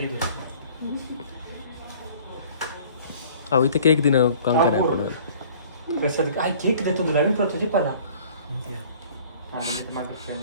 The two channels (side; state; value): both; inverted; correlation -0.51